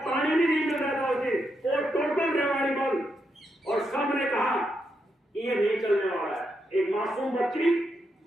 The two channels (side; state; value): both; normal; correlation 0.82